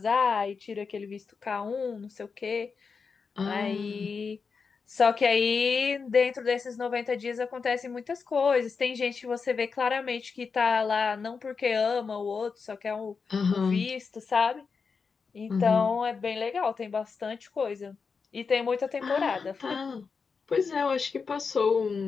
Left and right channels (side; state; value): right; quieter; 5.2 dB